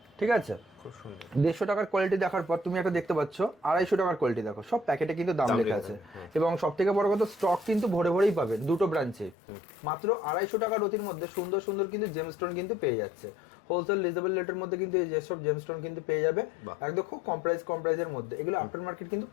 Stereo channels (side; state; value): right; drops out; at 9.3 s